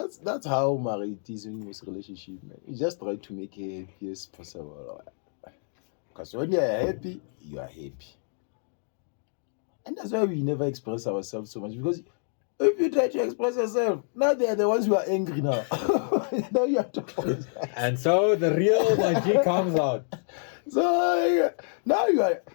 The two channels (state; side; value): silent; right; digital silence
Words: how married is in this relationship, man. You just try to make it happy as possible. Because when you are happy, you are happy. And that's why we never express ourselves so much. Because if you try to express yourself, now they are the ones who are angry now. Now you have to apologize. And so the real Mah G comes out. So now